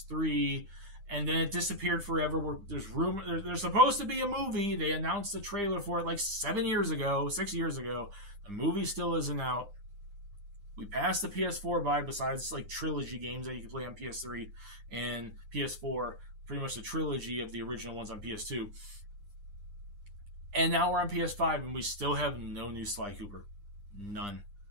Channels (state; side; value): late; left; 9.9 ms